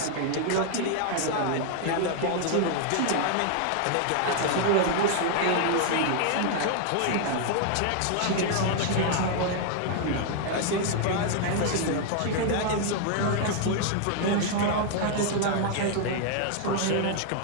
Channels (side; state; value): both; different; correlation 0.00